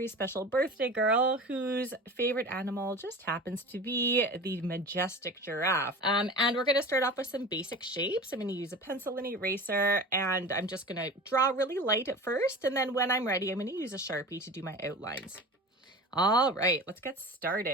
special birthday girl whose favorite animal just happens to be the majestic giraffe. And we're going to start off with some basic shapes. I'm going to use a pencil and eraser, and I'm just going to draw really light at first. And then when I'm ready, I'm going to use a Sharpie to do my outlines. All right, let's get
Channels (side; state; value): both; normal; correlation 0.35